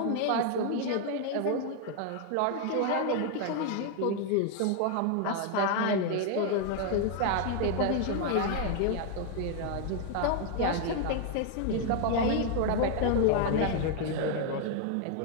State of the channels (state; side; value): different; both; correlation 0.00